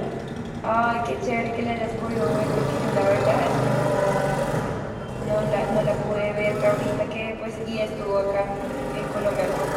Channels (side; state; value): both; identical; correlation 1.00